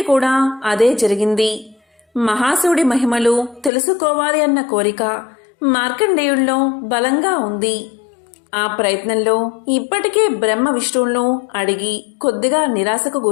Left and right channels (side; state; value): right; drops out; at 3.7 s